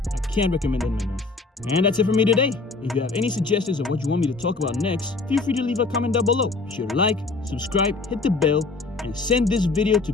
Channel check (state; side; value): quieter; right; 3.8 dB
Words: I can't recommend them enough. And that's it for me today. If you have any suggestions of what you want me to talk about next, feel free to leave a comment down below. Be sure to like, subscribe, hit the bell, and send this video to